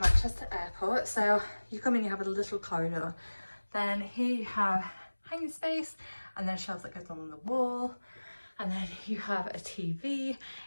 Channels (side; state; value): both; inverted; correlation -1.00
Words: Airport. So you come in, you have a little corridor, then here you have hanging space and then shelves that goes on the wall, and then you have a TV.